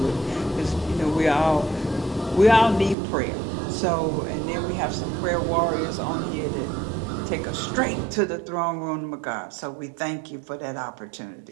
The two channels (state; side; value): drops out; left; at 3.0 s